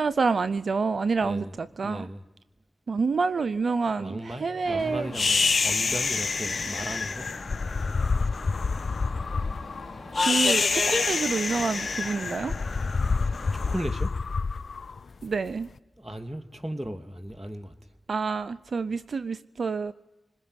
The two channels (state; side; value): normal; both; correlation 0.88